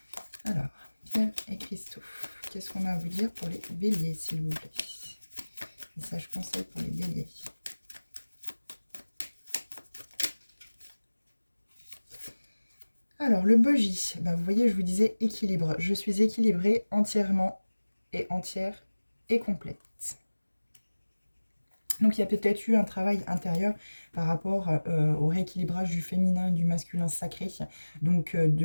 Alors, pierres et cristaux, qu'est-ce qu'on a à vous dire pour les béliers, s'il vous plaît? Message conseil pour les béliers. Alors, le bogie, ben, vous voyez, je vous disais équilibre. Je suis équilibrée entièrement et entière et complète. Donc, il y a peut-être eu un travail intérieur par rapport au rééquilibrage du féminin et du masculin sacré. Donc,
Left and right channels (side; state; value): both; inverted; correlation -1.00